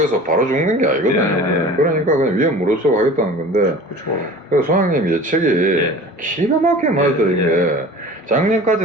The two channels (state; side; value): normal; both; correlation 0.40